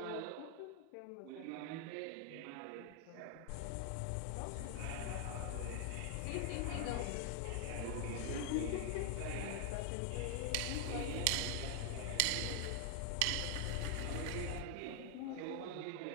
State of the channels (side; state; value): both; different; correlation 0.00